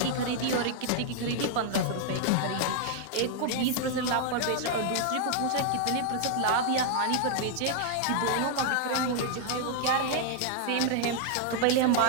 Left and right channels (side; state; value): both; different; correlation 0.00